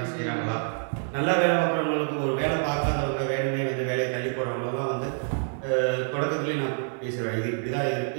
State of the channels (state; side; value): silent; left; 60 dB below the other